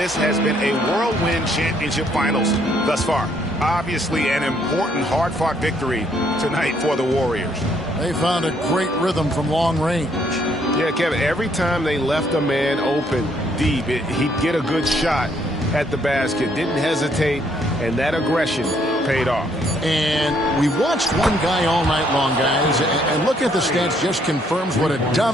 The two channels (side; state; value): both; normal; correlation 0.68